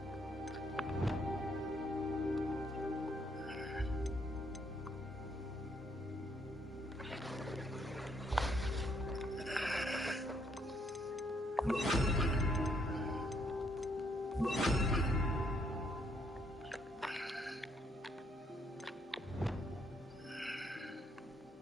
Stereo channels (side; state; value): both; normal; correlation 0.72